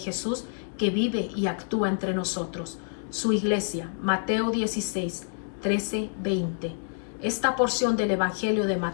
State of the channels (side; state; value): right; silent; digital silence